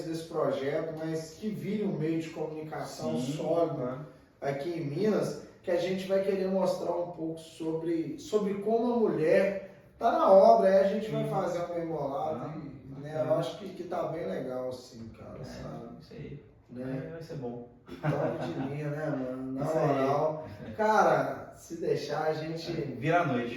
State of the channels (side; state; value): both; identical; correlation 1.00